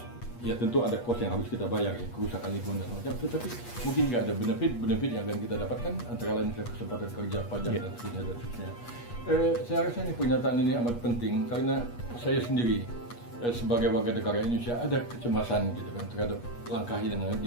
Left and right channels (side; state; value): right; late; 8.3 ms